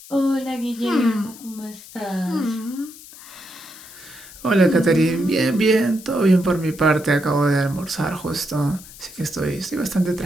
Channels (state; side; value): noise; left; hiss, 18 dB below the sound